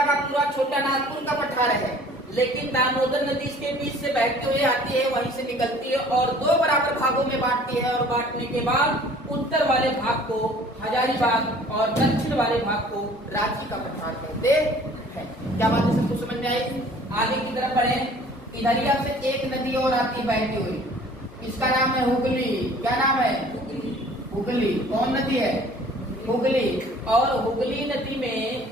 का पूरा छोटा नागपुर का पठार है, लेकिन दामोदर नदी इसके बीच से बहती हुई आती है, वहीं से निकलती है और 2 बराबर भागों में बांटती है। और बांटने के बाद उत्तर वाले भाग को हजारीबाग और दक्षिण वाले भाग को रांची का पठार कहते हैं। क्या बात है? सबको समझ में आई? आगे की तरफ बढ़े। इधरिया से एक नदी और आती है बहती हुई, इसका नाम है हुगली। क्या नाम है? हुगली। कौन नदी है? हुगली। और हुगली नदी में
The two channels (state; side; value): normal; both; correlation 0.51